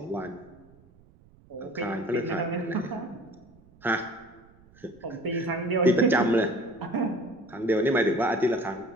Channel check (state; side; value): noise; right; rumble, 27 dB below the sound